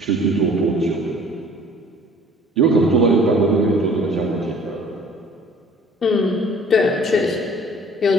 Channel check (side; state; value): both; normal; correlation 0.51